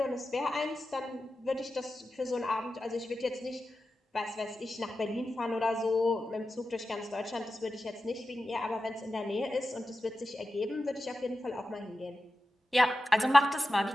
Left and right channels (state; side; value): normal; both; correlation 0.92